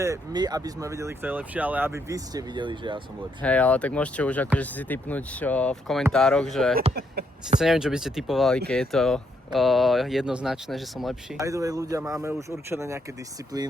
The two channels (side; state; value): both; normal; correlation 0.76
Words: my, aby sme videli, kto je lepší, ale aby vy ste videli, že ja som lepší. Hej, ale tak môžete už akože si tipnúť v komentároch, že síce neviem, čo by ste tipovali, keď je to jednoznačné, že som lepší. By the way, ľudia, máme už určené nejaké